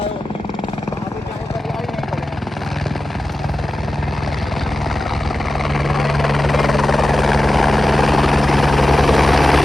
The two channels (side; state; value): both; normal; correlation 0.94